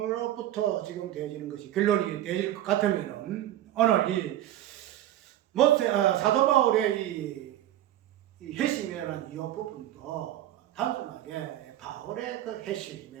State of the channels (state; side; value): quieter; left; 13.1 dB